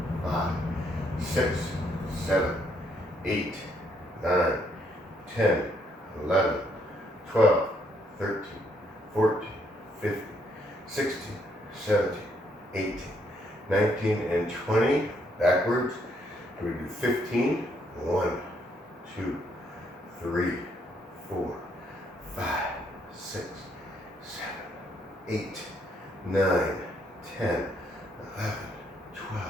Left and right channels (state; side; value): normal; both; correlation 0.72